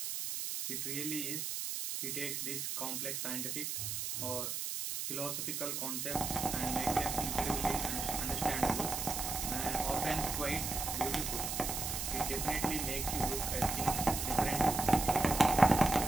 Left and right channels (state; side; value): noise; right; hiss, 3 dB below the sound